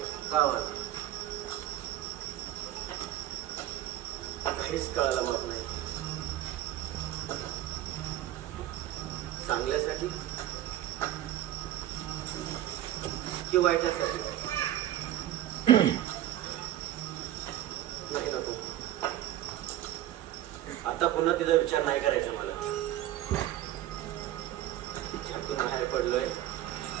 गावात काहीच कळायला माग नाही. चांगल्यासाठी की वाईटासाठी? नाही नको. आता पुन्हा तिचा विचार नाही करायचा मला. ज्यातून बाहेर पडलोय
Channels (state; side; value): quieter; left; 13.2 dB